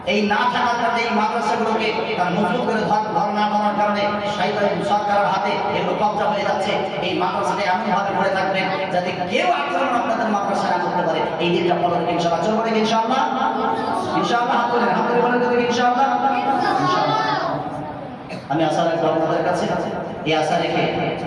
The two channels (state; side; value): identical; both; correlation 1.00